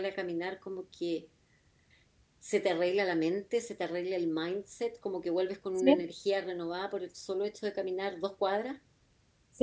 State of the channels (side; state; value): both; identical; correlation 1.00